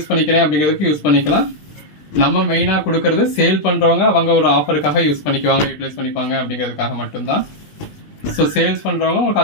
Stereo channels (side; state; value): right; late; 20 ms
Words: பண்ணிக்கிறேன் அப்படிங்கிறதுக்கு யூஸ் பண்ணிக்கலாம். நம்ம மெயினாக கொடுக்கறது சேல் பண்ணுறவங்க அவங்க ஒரு ஆஃபருக்காக யூஸ் பண்ணிக்குவாங்க, யூட்டிலைஸ் பண்ணிப்பாங்க அப்படிங்கிறதுக்காக மட்டும்தான். ஸோ சேல்ஸ் பண்ணுறவங்க உங்களுக்கு